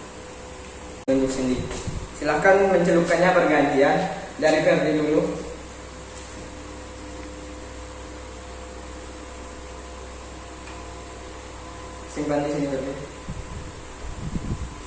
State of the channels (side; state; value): both; identical; correlation 1.00